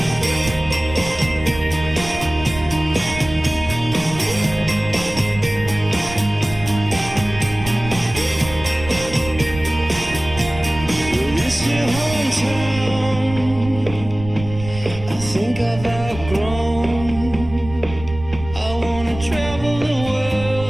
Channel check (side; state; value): right; noise; rumble, 12 dB below the sound